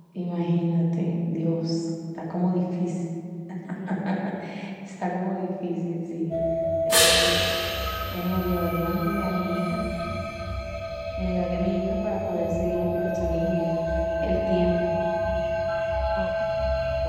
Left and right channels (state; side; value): identical; both; correlation 1.00